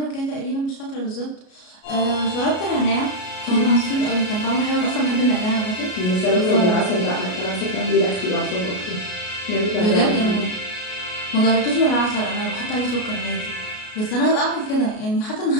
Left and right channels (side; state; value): right; late; 33 ms